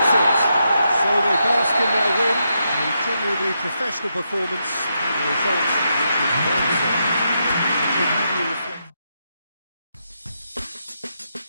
it. So they bask in their win, a genuinely professional performance, and the result which was well deserved. It should have you reflect.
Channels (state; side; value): inverted; both; correlation -0.83